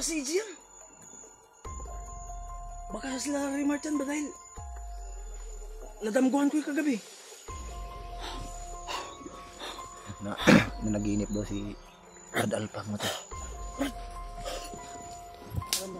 si EJ yan. Baka sila Remark yan ba dahil nadamguhan ko yung kagabi. Na nanaginip daw si Brad Alpa mo to. Alam,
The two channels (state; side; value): identical; both; correlation 1.00